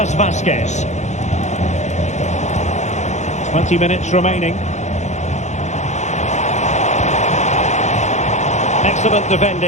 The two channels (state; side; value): late; right; 0.34 ms